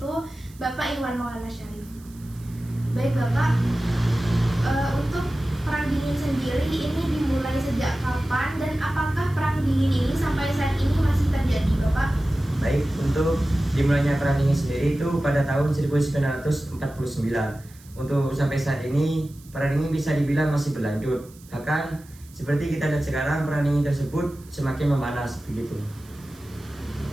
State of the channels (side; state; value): right; noise; hiss, 25 dB below the sound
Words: Bapak Iwan Maulana Syarif. Baik Bapak, untuk perang dingin sendiri ini dimulai sejak kapan dan apakah perang dingin ini sampai saat ini masih terjadi Bapak? Baik, untuk dimulainya perang dingin sendiri itu pada tahun 1949. Untuk sampai saat ini perang dingin bisa dibilang masih berlanjut. Bahkan seperti kita lihat sekarang perang dingin tersebut semakin memanas begitu.